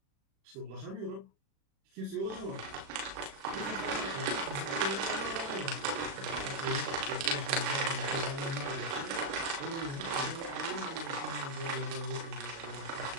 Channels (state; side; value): late; left; 36 ms